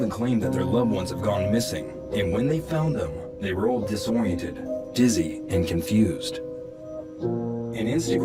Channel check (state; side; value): identical; both; correlation 1.00